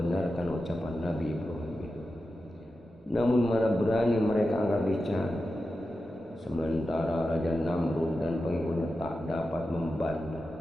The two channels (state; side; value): normal; both; correlation 0.91